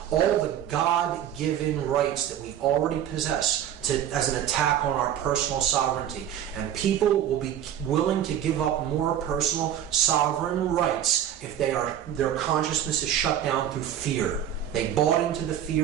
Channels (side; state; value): left; quieter; 10.3 dB